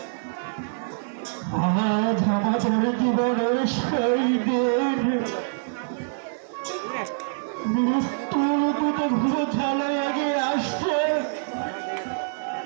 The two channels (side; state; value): left; silent; digital silence